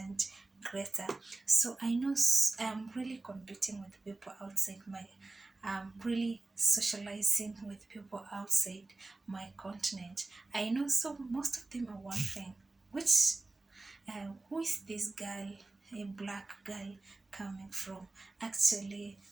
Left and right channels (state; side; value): quieter; left; 3.2 dB